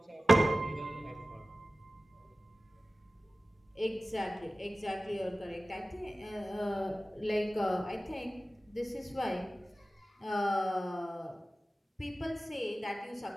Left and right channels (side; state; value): both; normal; correlation 0.96